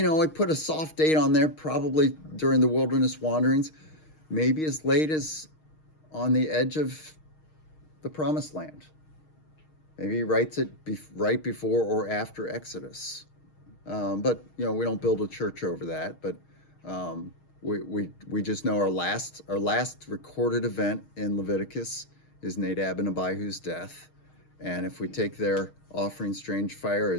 put a soft date on there, probably during the wilderness wanderings, maybe as late as on the edge of the promised land. Maybe he writes it right before or after Exodus. But we don't build a church over that. But we just know our last recorded event in Leviticus is Nadab and Abihu's death. And if we take their offering strange fire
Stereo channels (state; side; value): late; right; 6.4 ms